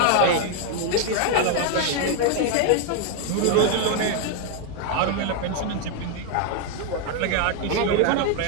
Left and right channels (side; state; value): both; different; correlation 0.00